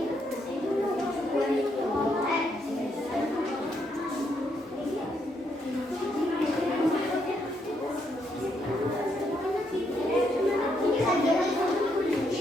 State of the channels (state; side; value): normal; both; correlation 0.76